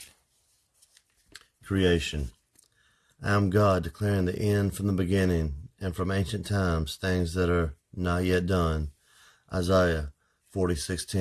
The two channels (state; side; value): identical; both; correlation 1.00